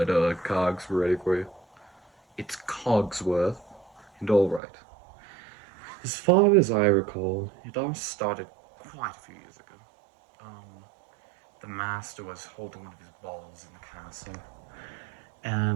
Cogs ready for you. It's Cogsworth, and alright. As far as I recall, it all started quite a few years ago. Um, the master was holding one of his balls in the castle,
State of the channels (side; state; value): left; drops out; at 4.6 s